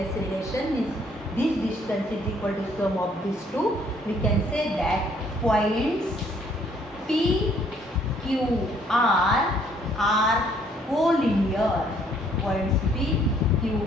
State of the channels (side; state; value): both; normal; correlation 0.64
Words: relation means this distance is equal to sum of these two, we can say that points P, Q, R are collinear. Points P, Q,